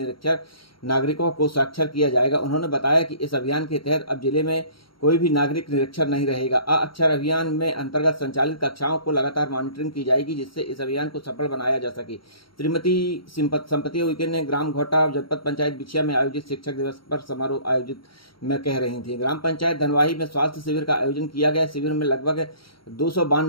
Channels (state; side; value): late; right; 0.74 ms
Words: नागरिकों को साक्षर किया जाएगा। उन्होंने बताया कि इस अभियान के तहत अब जिले में कोई भी नागरिक निरक्षर नहीं रहेगा। अक्षर अभियान में अंतर्गत संचालित कक्षाओं को लगातार मॉनिटरिंग की जाएगी, जिससे इस अभियान को सफल बनाया जा सके। श्रीमती संपत्ति उइके ने ग्राम घोटा जनपद पंचायत बिछिया में आयोजित शिक्षक दिवस पर समारोह आयोजित में कह रही थी। ग्राम पंचायत धनवाही में स्वास्थ्य शिविर का आयोजन किया गया। शिविर में लगभग